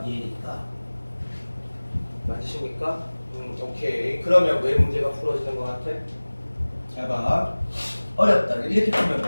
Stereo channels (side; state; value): both; inverted; correlation -1.00